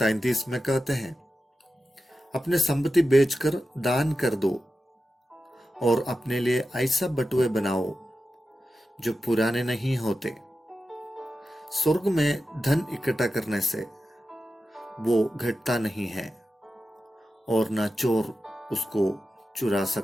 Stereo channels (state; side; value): normal; both; correlation 0.92